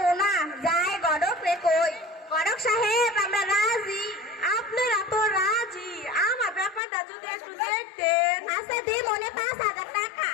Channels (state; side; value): drops out; right; at 6.8 s